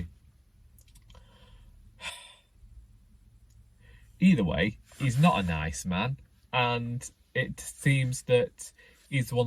Either way, he's not a nice man, and it seems that he's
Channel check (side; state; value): both; identical; correlation 1.00